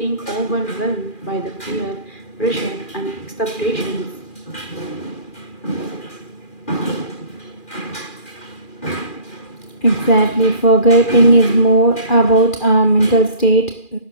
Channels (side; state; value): right; late; 2.4 ms